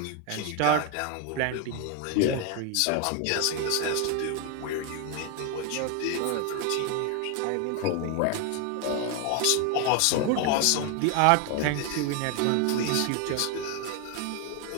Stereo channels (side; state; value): both; different; correlation 0.01